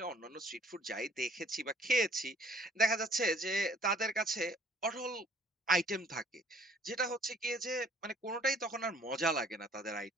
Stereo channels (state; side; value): normal; both; correlation 0.58